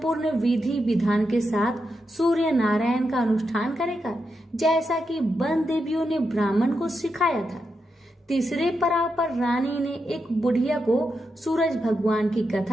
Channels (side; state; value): both; normal; correlation 0.85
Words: विधि विधान के साथ सूर्य नारायण का अनुष्ठान करेगा, जैसा कि वन देवियों ने ब्राह्मण को सिखाया था। तीसरे पड़ाव पर रानी ने एक बुढ़िया को सूरज भगवान की